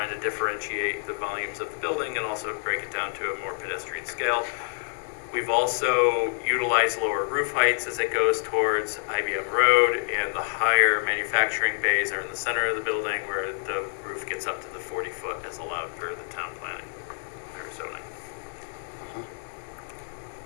to differentiate the volumes of the building and also break it down to a more pedestrian scale. We've also utilized lower roof heights as it goes towards IBM Road, and the higher manufacturing bays are in the center of the building where the roof gets up to the 40-foot as allowed per the town planning or zoning.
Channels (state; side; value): silent; right; 60 dB below the other